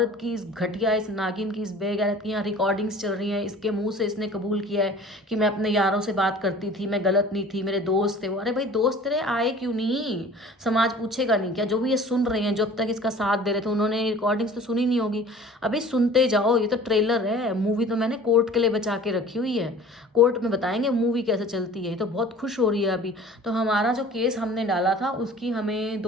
की, इस घटिया, इस नागिन की, इस बेगैरत की यहाँ रिकॉर्डिंग्स चल रही हैं, इसके मुंह से इसने कबूल किया है कि मैं अपने यारों से बात करती थी, मैं गलत नहीं थी, मेरे दोस्त थे वो। अरे भाई दोस्त तेरे आए क्यों नहीं? समाज पूछेगा नहीं क्या? जो भी ये सुन रहे हैं, जो अब तक इसका साथ दे रहे थे, उन्होंने रिकॉर्डिंग्स तो सुनी नहीं होगी। अभी सुनते जाओ, ये तो ट्रेलर है, मूवी तो मैंने कोर्ट के लिए बचा के रखी हुई है। कोर्ट में बताएंगे मूवी कैसे चलती है। ये तो बहुत खुश हो रही है अभी। तो हमारा जो केस हमने डाला था उसकी हमें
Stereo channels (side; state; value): both; normal; correlation 0.46